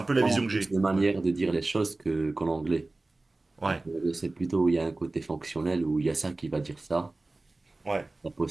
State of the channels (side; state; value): left; quieter; 3.1 dB